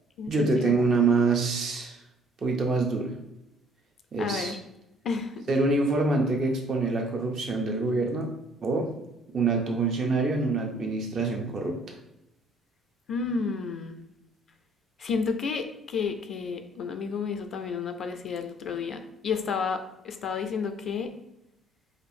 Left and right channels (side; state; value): both; normal; correlation 0.59